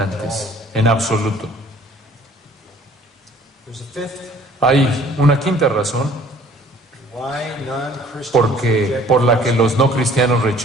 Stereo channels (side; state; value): both; normal; correlation 0.55